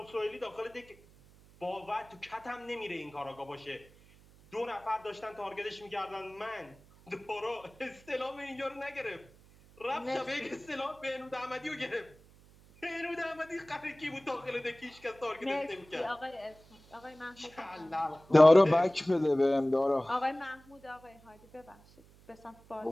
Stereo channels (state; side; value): noise; right; hum, 25 dB below the sound